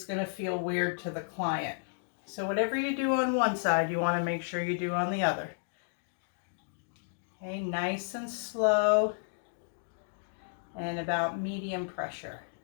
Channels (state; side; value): silent; right; digital silence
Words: going to feel weird to the client. So whatever you do on one side, you want to make sure you do on the other. Okay, nice and slow and about medium pressure.